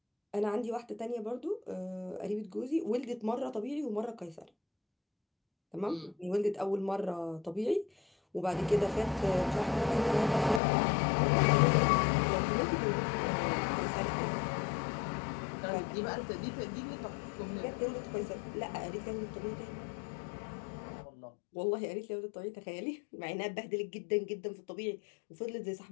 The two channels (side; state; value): right; drops out; at 10.6 s